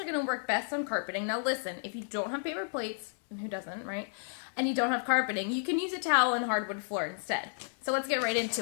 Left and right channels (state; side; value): silent; right; 56 dB below the other